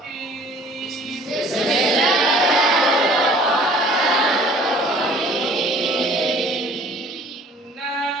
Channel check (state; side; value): normal; both; correlation 0.52